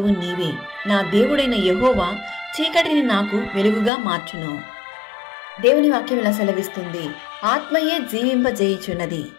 నీవే, నా దేవుడైన యెహోవా చీకటిని నాకు వెలుగుగా మార్చును. దేవుని వాక్యం ఇలా సెలవిస్తుంది, ఆత్మయే జీవింపజేయుచున్నది,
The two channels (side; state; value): right; drops out; at 3.9 s